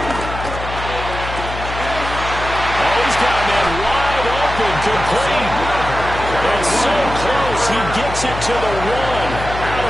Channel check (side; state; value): left; noise; hum, 8 dB below the sound